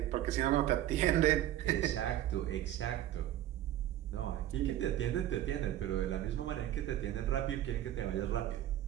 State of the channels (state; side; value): quieter; left; 12.7 dB